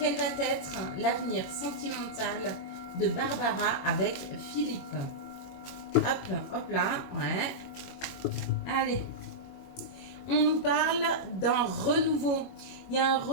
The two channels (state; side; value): late; right; 22 ms